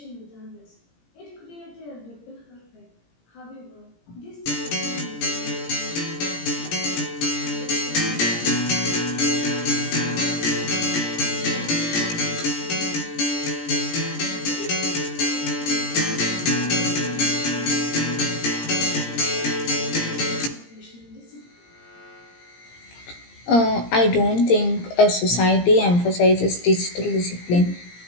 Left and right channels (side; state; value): right; late; 17 ms